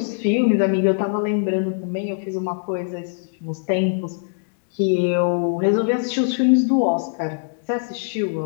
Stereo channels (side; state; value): right; silent; 62 dB below the other